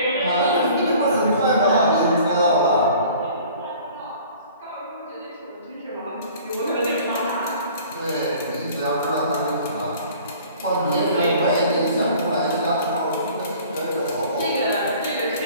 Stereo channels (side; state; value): both; inverted; correlation -0.49